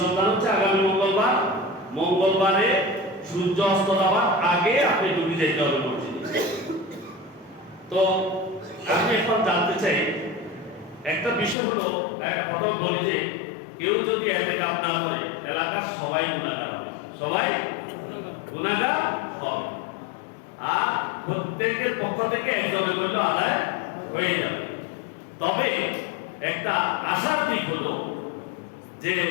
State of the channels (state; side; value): drops out; right; at 11.6 s